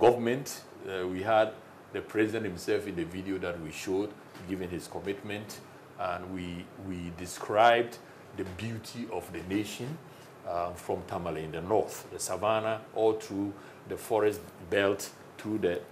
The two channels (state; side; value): identical; both; correlation 1.00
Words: We had the president himself in the video that we showed, giving his commitment, and we described the beauty of the nation from Tamale in the north, the savannah, all through the forest belt, through the